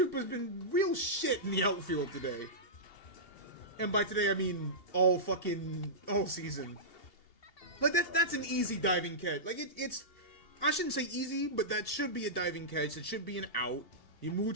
been real shit in the outfield today. And by today, I mean all season. Like, that's an easy diving catch. Like, it's... I shouldn't say easy, but that should be a diving catch. It should be an out. You move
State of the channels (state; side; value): late; right; 2.8 ms